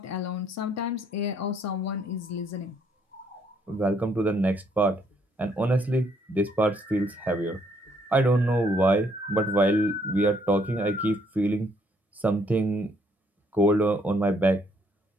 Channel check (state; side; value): normal; both; correlation 0.68